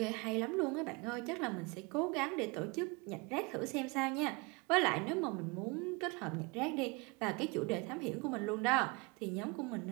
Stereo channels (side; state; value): left; quieter; 28.4 dB